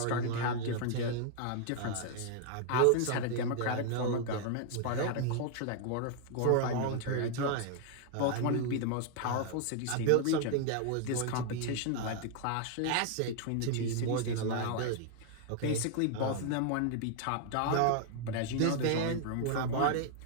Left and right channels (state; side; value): different; both; correlation 0.00